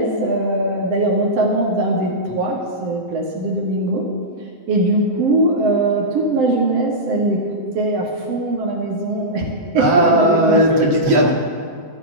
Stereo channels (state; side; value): late; left; 7.8 ms